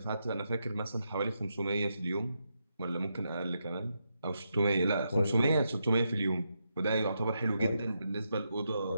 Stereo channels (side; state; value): both; inverted; correlation -0.84